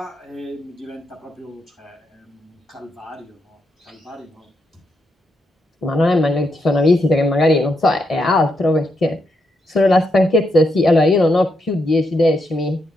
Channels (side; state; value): both; normal; correlation 0.81